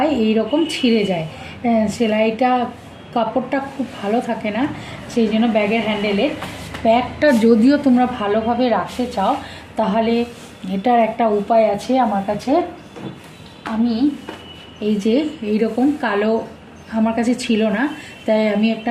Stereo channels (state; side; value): identical; both; correlation 1.00